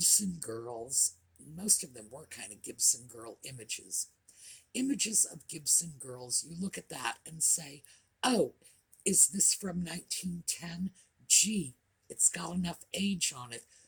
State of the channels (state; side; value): identical; both; correlation 1.00